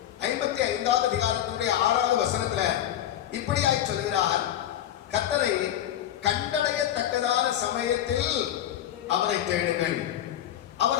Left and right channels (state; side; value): quieter; right; 11.6 dB